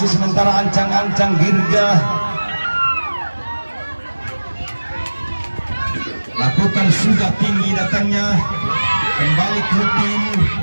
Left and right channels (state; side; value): inverted; both; correlation -1.00